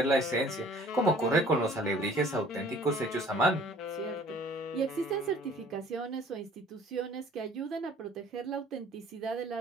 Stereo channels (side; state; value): both; normal; correlation 0.53